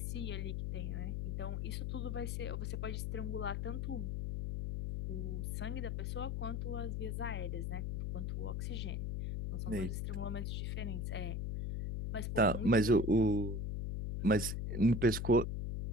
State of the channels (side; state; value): left; noise; hum, 1 dB below the sound